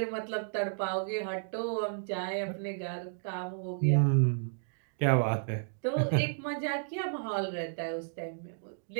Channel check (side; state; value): left; silent; digital silence